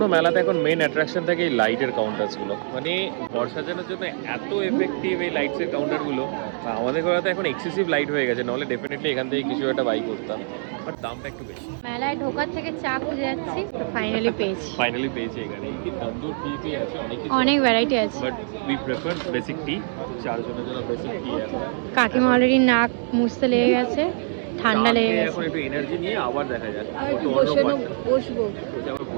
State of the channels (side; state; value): left; silent; 63 dB below the other